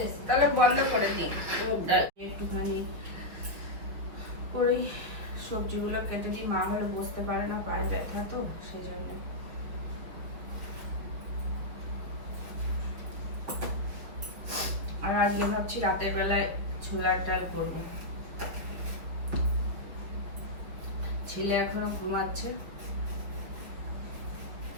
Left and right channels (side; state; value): left; late; 6.3 ms